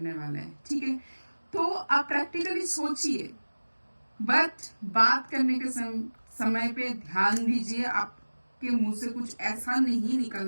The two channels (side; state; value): both; inverted; correlation -1.00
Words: वाला है, ठीक है। तो आप प्रैक्टिकली सोचिए, बट बात करने के समय पे ध्यान दीजिए, आपके मुंह से कुछ ऐसा नहीं